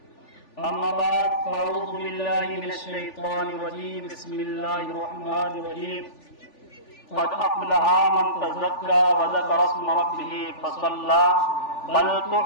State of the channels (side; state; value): right; late; 3.4 ms